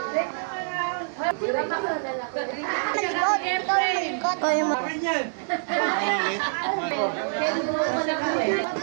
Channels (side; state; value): left; silent; digital silence